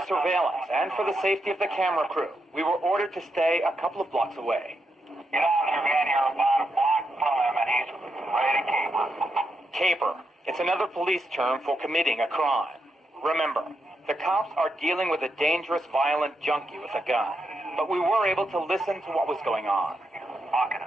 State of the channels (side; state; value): both; normal; correlation 0.83